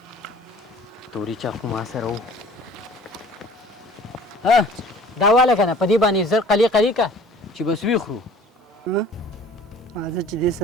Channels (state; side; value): normal; both; correlation 0.49